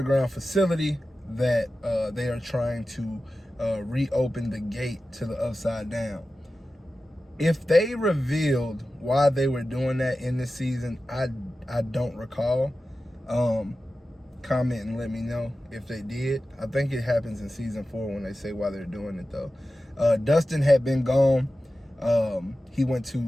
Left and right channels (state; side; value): normal; both; correlation 0.94